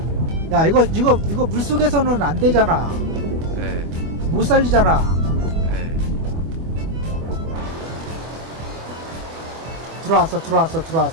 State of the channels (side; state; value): left; late; 24 ms